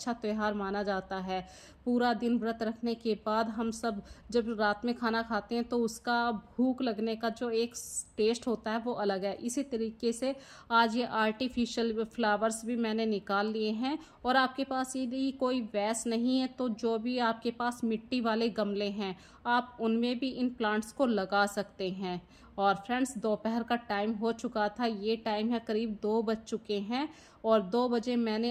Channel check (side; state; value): both; identical; correlation 1.00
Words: त्यौहार माना जाता है। पूरा दिन व्रत रखने के बाद हम सब जब रात में खाना खाते हैं तो उसका भूख लगने का जो एक टेस्ट होता है वो अलग है। इसी तरीके से आज ये आर्टिफिशियल फ्लावर्स भी मैंने निकाल लिए हैं। और आपके पास यदि कोई वैस नहीं है तो जो भी आपके पास मिट्टी वाले गमले हैं आप उनमें भी इन प्लांट्स को लगा सकते हैं। और फ्रेंड्स, दोपहर का टाइम हो चुका था, ये टाइम है करीब 2 बज चुके हैं और 2 बजे मैंने